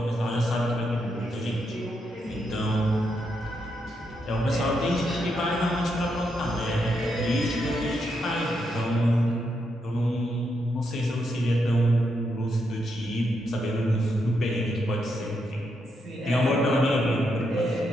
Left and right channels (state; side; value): normal; both; correlation 0.81